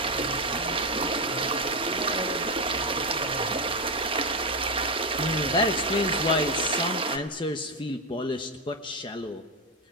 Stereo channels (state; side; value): normal; both; correlation 0.08